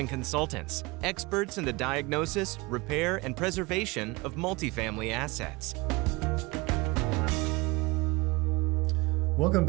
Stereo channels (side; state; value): left; quieter; 24.0 dB